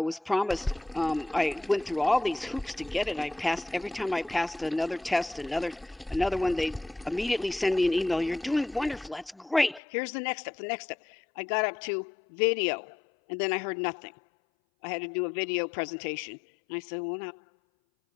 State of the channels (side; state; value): right; drops out; at 9.8 s